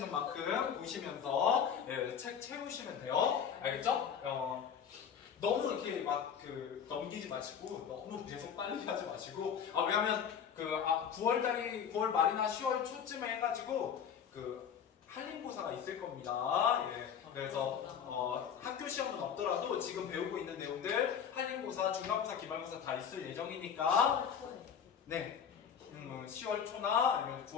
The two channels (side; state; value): right; quieter; 7.8 dB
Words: 만큼 보시면서 책 채우시면 돼요. 알겠죠? 너무 이렇게 막 넘기지 마시고 너무 계속 빨리 하지 마시고 왜냐면 9월 말이나 10월 초쯤에 해가지고 한림고사가 있을 겁니다. 예. 그래서 학교 시험은 없더라도 지금 배우고 있는 내용들 한림고사, 중간고사, 기말고사 다 있을 예정이니까 네. 10월 초나 아니면